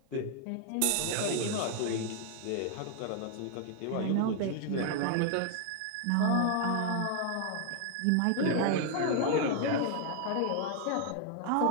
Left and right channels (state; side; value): different; both; correlation 0.00